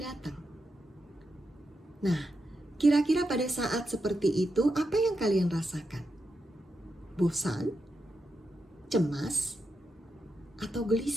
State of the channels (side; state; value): both; normal; correlation 0.86